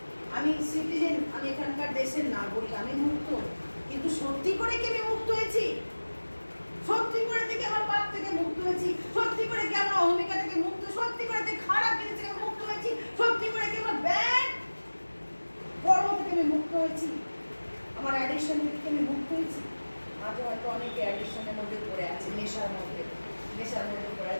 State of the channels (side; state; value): both; inverted; correlation -1.00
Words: আমি সিটিজেন, আমি এখানকার দেশের নাগরিক, আমি মুক্ত, কিন্তু সত্যি করে কি আমি মুক্ত হয়েছি? সত্যি করে কি আমার পাপ থেকে মুক্ত হয়েছি? সত্যি করে কি আমার অহমিকা থেকে মুক্ত? সত্যি করে কি খারাপ জিনিস থেকে মুক্ত হয়েছি? সত্যি করে কি আমার ব্যাড কর্ম থেকে আমি মুক্ত হয়েছি? আমার অ্যাডিকশন থেকে আমি মুক্ত হয়েছি? আজও হয়তো অনেকে অ্যাডিকশনের মধ্যে পড়ে আছে, নেশার মধ্যে পড়ে